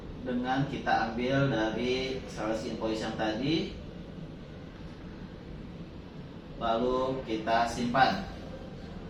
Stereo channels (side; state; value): both; identical; correlation 1.00